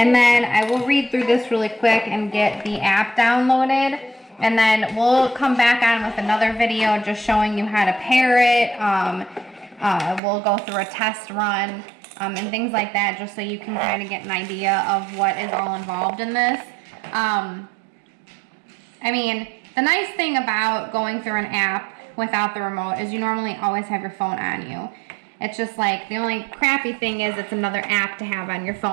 then I will read through this really quick and get the app downloaded. And then we'll come back on with another video just showing you how to pair it. We'll go through a test run and things like that, just so you can kind of get an idea of what is all involved in this. I mean, the nice thing about going through an app without the remote is you normally always have your phone on you. It's just like, the only crappy thing is it's another app to have on your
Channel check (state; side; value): drops out; left; at 10.2 s